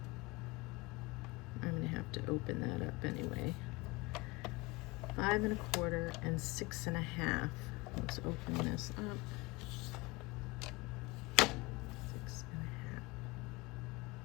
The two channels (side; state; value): right; quieter; 23.7 dB